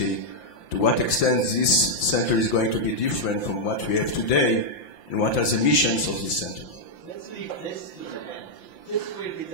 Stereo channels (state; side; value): late; right; 5.8 ms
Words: To what extent this center is going to be different from what we have today, and what are the missions of this center? Let's leave this to the end. This will be